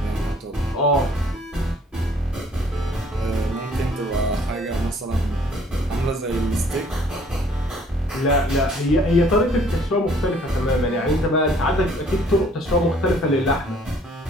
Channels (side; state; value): both; normal; correlation 0.59